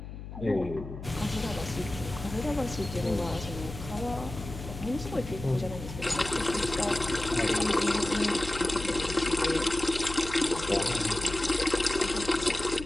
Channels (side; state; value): left; noise; hum, 10 dB below the sound